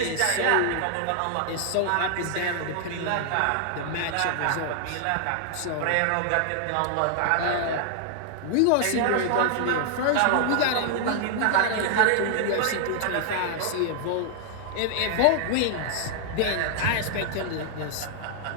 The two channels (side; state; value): both; different; correlation -0.01